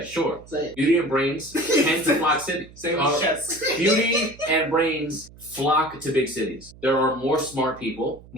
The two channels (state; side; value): noise; right; hum, 22 dB below the sound